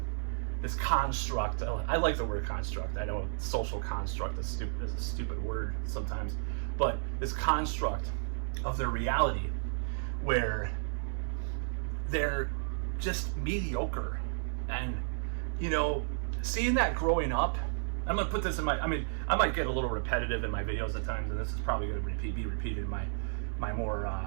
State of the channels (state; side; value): silent; left; digital silence